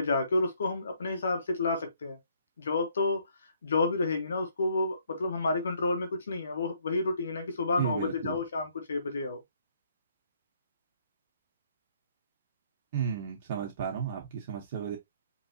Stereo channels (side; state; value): both; inverted; correlation -0.66